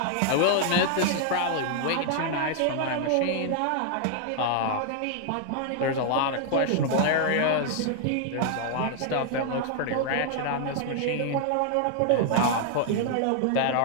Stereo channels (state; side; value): different; both; correlation 0.00